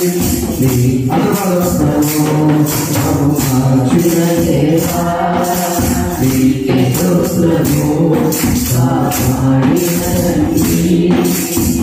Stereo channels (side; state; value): both; identical; correlation 1.00